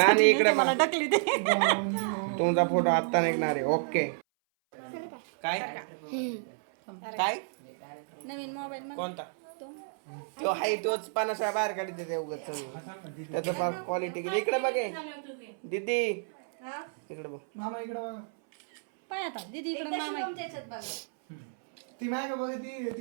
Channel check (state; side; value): silent; left; 57 dB below the other